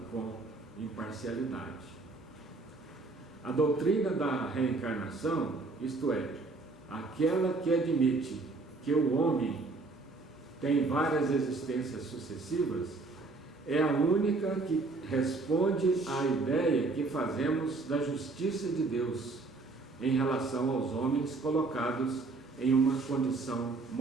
com imparcialidade. A doutrina da reencarnação, isto é, aquela que admite que o homem tem várias existências sucessivas, é a única que responde à ideia que fazemos da justiça de Deus em relação aos homens colocados em uma condição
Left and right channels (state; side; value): quieter; left; 3.6 dB